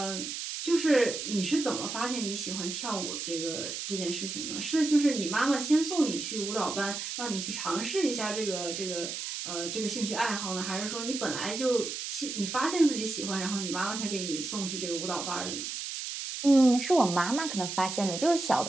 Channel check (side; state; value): right; noise; hiss, 5 dB below the sound